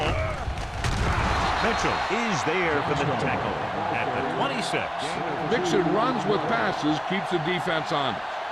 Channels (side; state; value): both; identical; correlation 1.00